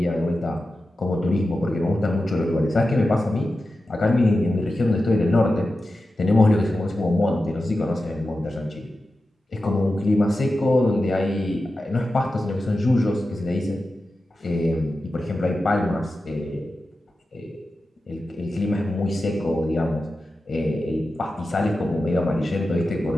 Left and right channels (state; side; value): normal; both; correlation 0.92